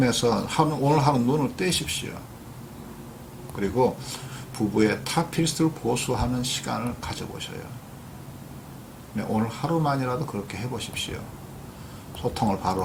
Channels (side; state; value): both; identical; correlation 1.00